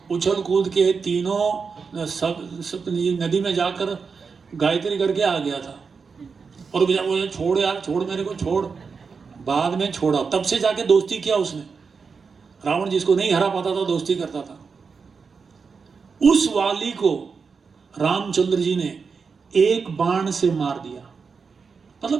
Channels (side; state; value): left; quieter; 5.3 dB